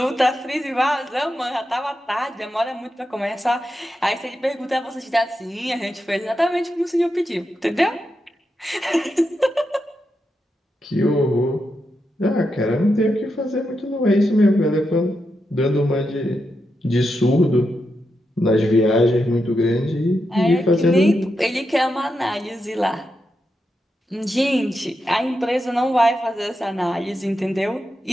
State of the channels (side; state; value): both; normal; correlation 0.86